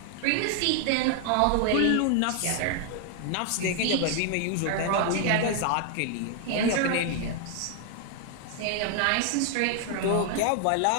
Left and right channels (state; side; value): different; both; correlation 0.00